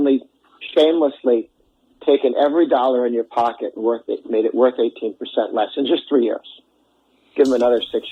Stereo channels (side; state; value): both; identical; correlation 1.00